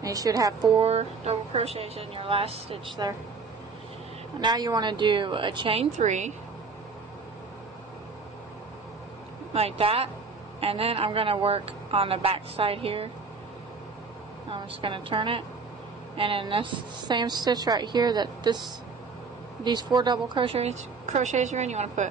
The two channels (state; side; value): quieter; left; 4.6 dB